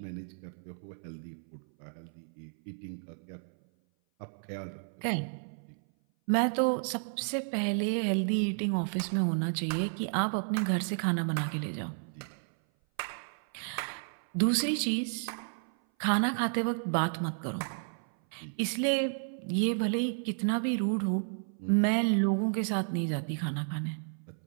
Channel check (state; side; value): silent; left; 56 dB below the other